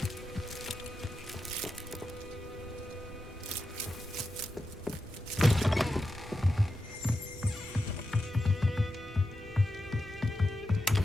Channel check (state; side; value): normal; both; correlation 0.89